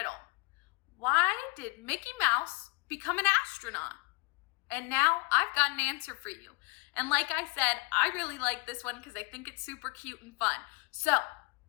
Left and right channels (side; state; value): right; quieter; 28.7 dB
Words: Why did Mickey Mouse become an astronaut? And now I've got an answer for you. And like I said, I really like this one because I think it's super cute and fun. So,